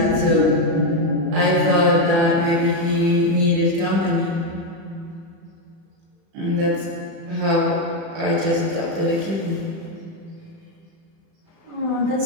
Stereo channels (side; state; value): left; late; 36 ms